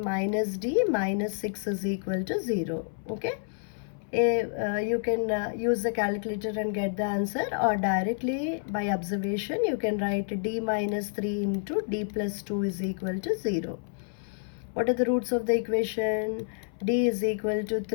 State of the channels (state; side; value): silent; right; 59 dB below the other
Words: d minus 6 is equal to 0. Okay, you can use the calculator and get the answer, or directly by observation you can write d minus 3 into d plus 2 is equal to 0. What are the roots of the equation? D is equal to